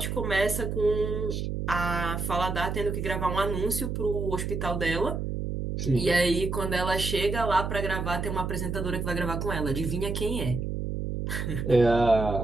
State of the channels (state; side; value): noise; right; hum, 3 dB below the sound